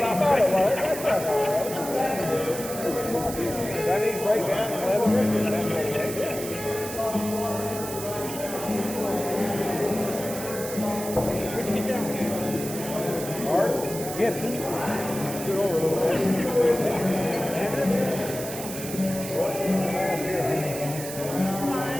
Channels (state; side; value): noise; right; hiss, 9 dB below the sound